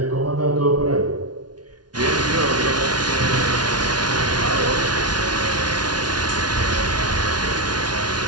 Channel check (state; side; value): late; left; 0.69 ms